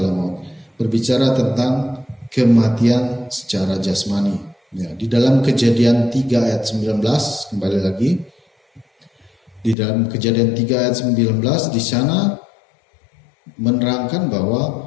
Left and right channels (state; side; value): drops out; right; at 9.8 s